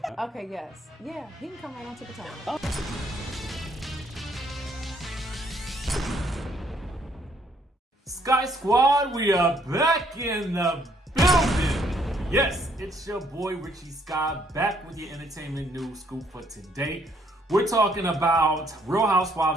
Okay, yes. Yeah, he can come right on to Potomac. Oh. Skye Squad, we are back in the building. Yes, it's your boy RHOSL back with your entertainment news scoop for today. We're talking about Real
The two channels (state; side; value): normal; both; correlation 0.68